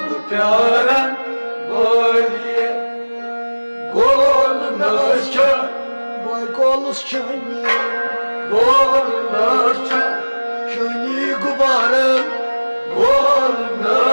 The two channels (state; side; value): inverted; both; correlation -1.00